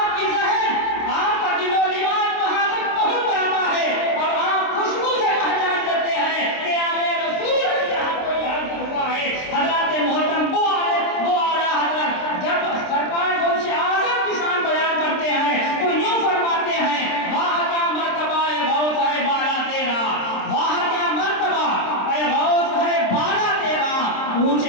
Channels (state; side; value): late; right; 26 ms